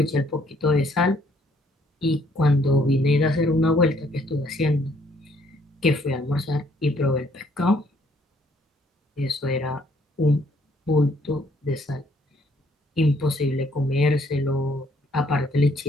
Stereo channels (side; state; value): both; normal; correlation 0.66